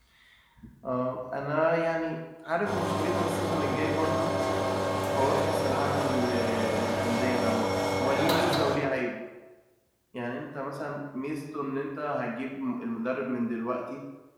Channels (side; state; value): both; identical; correlation 1.00